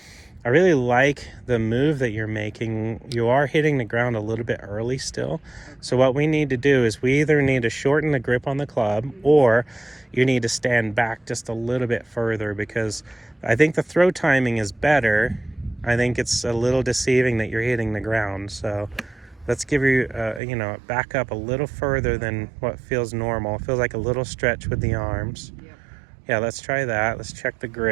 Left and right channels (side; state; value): left; drops out; at 20.4 s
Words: I really like the move that you're making. You are hitting the ground a little bit early still. So what we need to do is we either need to shorten the grip on the club or you need to stand back just a little bit further, because I think the throw timing is better. I think it's a little deceiving that you're hitting the ground. So let's give you, back up a little further than what feels normal. It feels like a little stretch with the arms. Yeah, let's try that. Let's check the